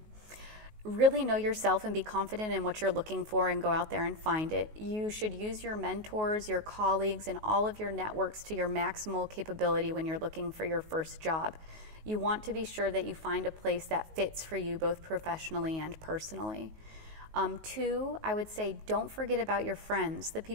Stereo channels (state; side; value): late; left; 19 ms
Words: Really know yourself and be confident in what you're looking for and go out there and find it. You should use your mentors, your colleagues, and all of your networks to your maximal capability when you're looking for your first job. You want to be sure that you find a place that fits for you both professionally and personally. 2, I would say don't forget about your friends, the